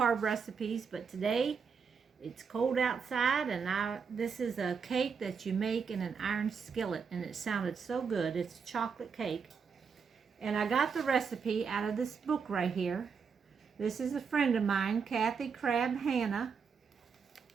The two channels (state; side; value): quieter; left; 6.0 dB